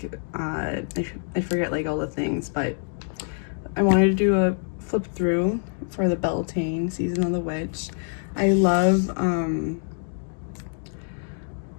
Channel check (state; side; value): silent; right; 61 dB below the other